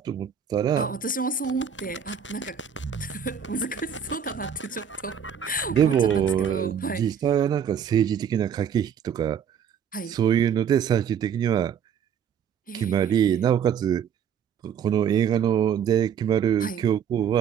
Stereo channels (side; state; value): left; quieter; 8.0 dB